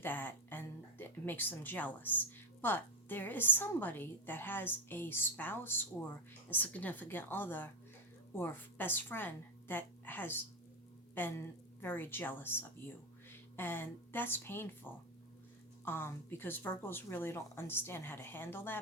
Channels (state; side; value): normal; both; correlation 0.11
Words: and it makes them jealous. But there is somebody that has a spouse or a significant other or best friend that has been very jealous of you. And that's painful, because Virgos really don't understand how to handle